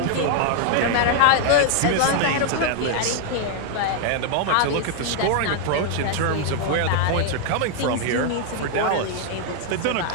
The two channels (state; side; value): different; both; correlation 0.00